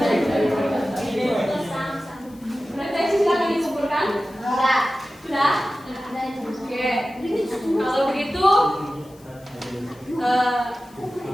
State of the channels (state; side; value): noise; left; hiss, 27 dB below the sound